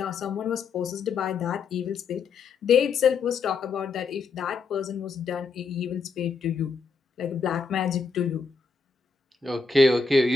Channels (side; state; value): right; quieter; 4.8 dB